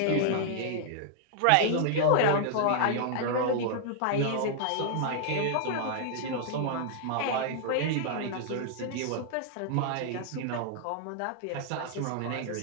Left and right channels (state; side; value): different; both; correlation -0.01